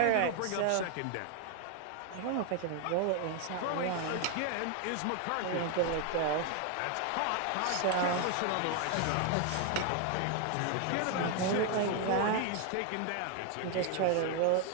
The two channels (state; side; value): different; both; correlation 0.01